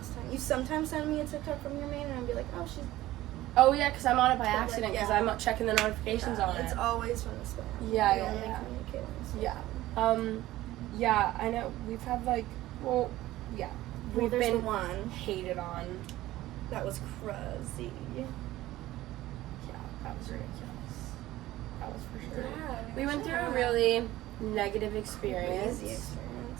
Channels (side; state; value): left; quieter; 16.0 dB